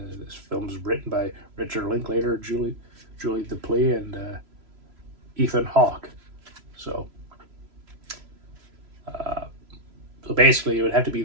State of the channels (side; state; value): left; late; 3.0 ms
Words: this film is written by Richard Linklater, Julie Delpy, and Ethan Hawke. So basically, it would have to be